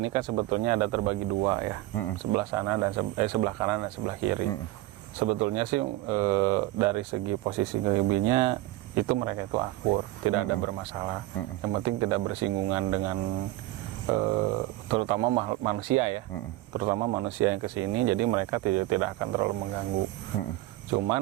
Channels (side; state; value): left; quieter; 17.0 dB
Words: kan sebetulnya ada terbagi dua ya, sebelah sana dan sebelah kanan dan sebelah kiri. Sebetulnya sih dari segi posisi gaibnya itu mereka itu akur, tidak ada bermasalah. Yang penting tidak bersinggungan dengan terutama manusia ya, terutama manusia yang kesini. Jadi mereka tidak akan terlalu mengganggu.